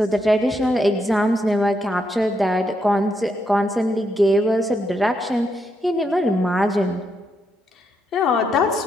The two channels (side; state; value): both; normal; correlation 0.79